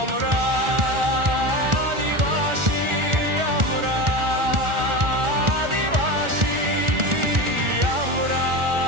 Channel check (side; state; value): left; late; 1.4 ms